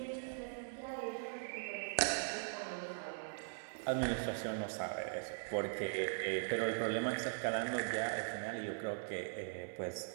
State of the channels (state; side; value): silent; left; digital silence